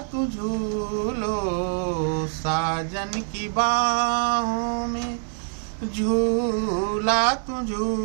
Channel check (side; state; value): left; silent; digital silence